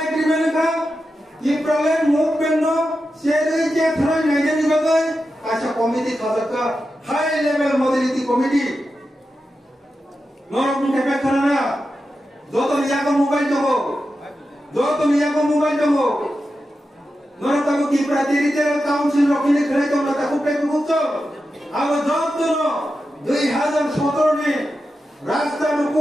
एग्रीमेंट का ये प्रॉब्लम मूवमेंट नो शेरे जे थरा नाइजे निबगे कैसा कमिटी खासका हाई लेवल मोबिलिटी कमिटी नोर मुके पे करना जो तो लिया को मोबाइल दो नोर ताको की प्रातिनिधिक काउंसिल रखिले खरे तो ताकुते बुझो अब जब तो 2017 में रास्ता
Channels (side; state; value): both; normal; correlation 0.90